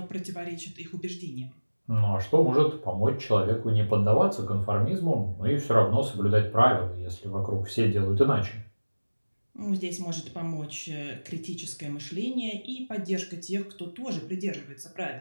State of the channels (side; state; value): both; inverted; correlation -1.00